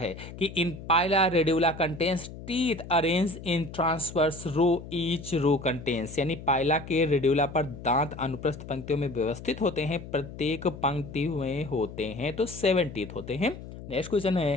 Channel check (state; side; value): noise; left; hum, 13 dB below the sound